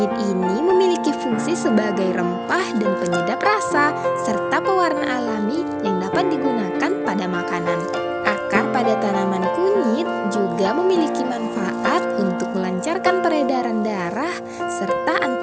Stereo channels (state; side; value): identical; both; correlation 1.00